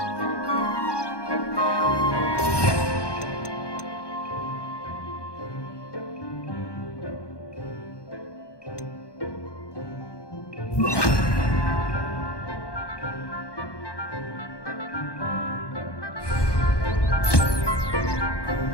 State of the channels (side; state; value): right; late; 1.2 ms